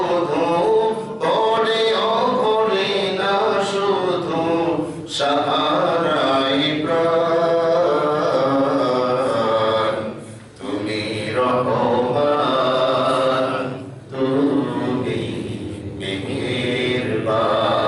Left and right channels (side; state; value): both; identical; correlation 1.00